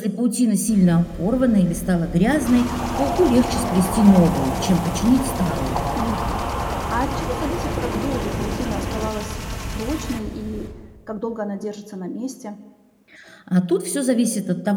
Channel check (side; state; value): both; identical; correlation 1.00